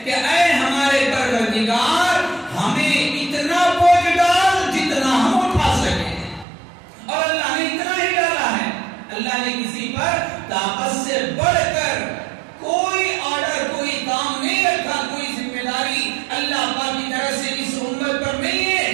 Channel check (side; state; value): left; drops out; at 6.5 s